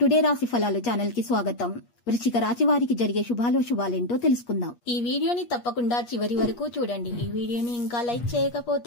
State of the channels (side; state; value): right; late; 8.4 ms